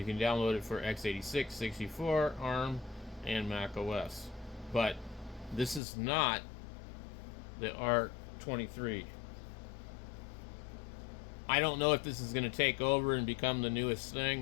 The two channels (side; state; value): right; drops out; at 5.8 s